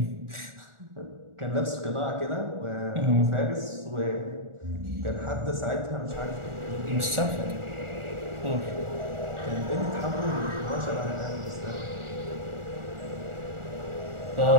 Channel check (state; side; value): late; left; 1.4 ms